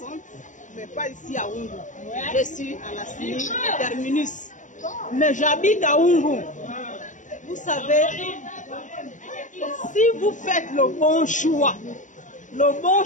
mais pas ici à Oungu. Je suis à la CINI Terminus. Mais j'habite à Oungu. Vous savez, si vous faites le bon choix,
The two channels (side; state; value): right; late; 0.36 ms